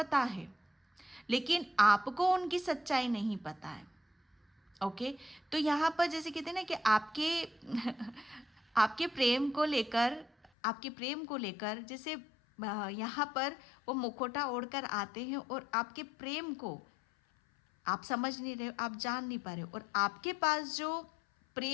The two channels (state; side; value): drops out; right; at 10.5 s